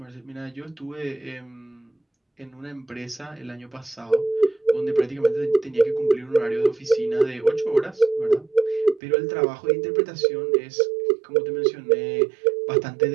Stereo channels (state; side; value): drops out; left; at 9.0 s